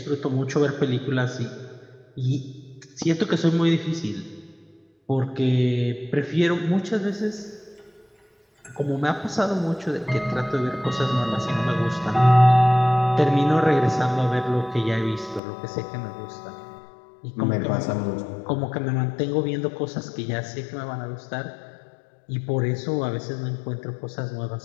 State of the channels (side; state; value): right; drops out; at 15.4 s